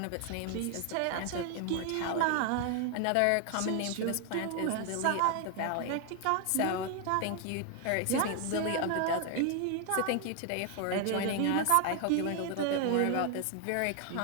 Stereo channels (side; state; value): both; different; correlation 0.00